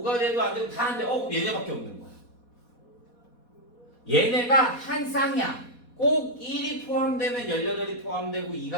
5가 돼도 안 되고, 다 안 돼. 그럼 얘네밖에 없는 거야. 얘네가 한 쌍이야. 꼭 1이 포함되면 18이 포함되고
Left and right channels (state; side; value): late; right; 4.2 ms